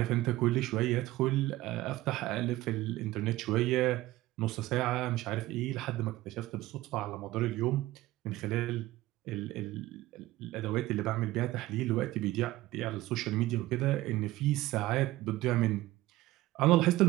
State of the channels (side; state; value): left; quieter; 17.1 dB